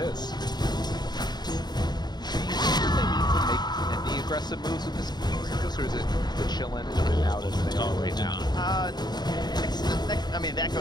Any aggressive moves with this, or is it the chillin' and out as they are right now? Next, I mean, the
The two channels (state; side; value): late; right; 0.20 ms